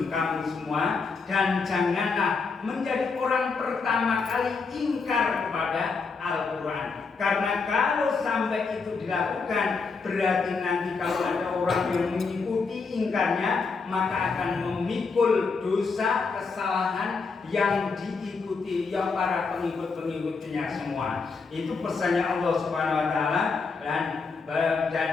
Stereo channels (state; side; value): quieter; right; 4.7 dB